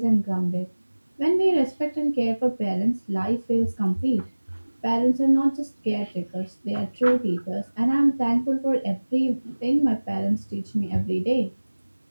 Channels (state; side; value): inverted; both; correlation -1.00